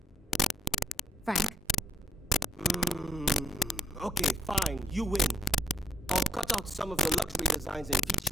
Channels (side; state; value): both; normal; correlation 0.65